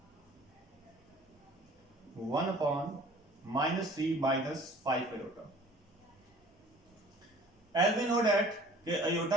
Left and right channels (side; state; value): both; normal; correlation 0.50